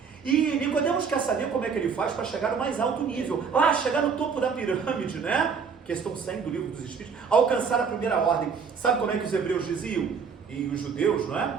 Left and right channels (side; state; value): left; quieter; 6.0 dB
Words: E Nicodemos quer saber como é que ele faz para chegar no mais alto nível, chegar no topo da pirâmide, né? Questão 100 do Livro dos Espíritos, alcançar a primeira ordem. Sabe como é que os hebreus diziam? E os judeus, não